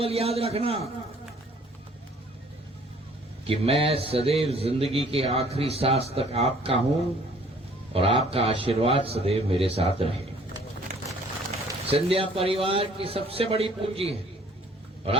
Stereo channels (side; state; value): both; normal; correlation 0.57